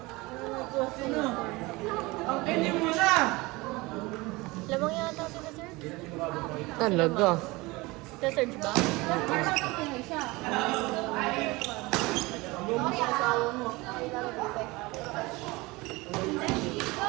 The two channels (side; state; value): left; quieter; 22.7 dB